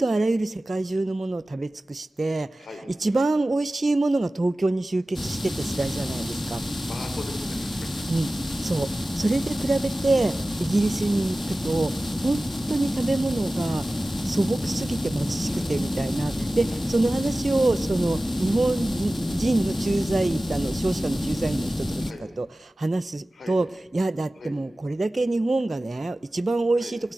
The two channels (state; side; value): normal; both; correlation 0.96